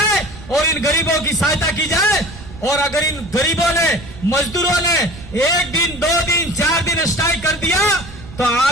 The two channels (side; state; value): right; noise; rumble, 16 dB below the sound